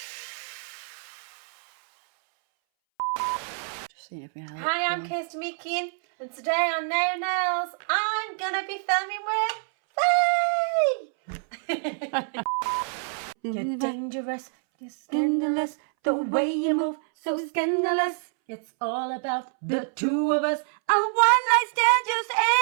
Just seeing if we have Hi, I'm Kirsty Meekin, and today on Naio Nails, I'm gonna be filming with Faye! You're dangerous, you're scandalous, the way you move, so scandalous. It's all about the two of us. A one night stand just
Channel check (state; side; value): silent; left; 61 dB below the other